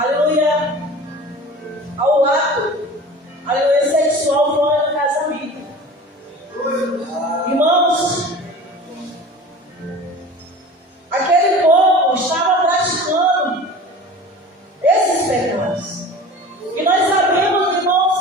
ao ato, aleluia, sexual fora do casamento. Irmãos, aquele povo estava praticando esses pecados. E nós sabemos,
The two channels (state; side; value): normal; both; correlation 0.38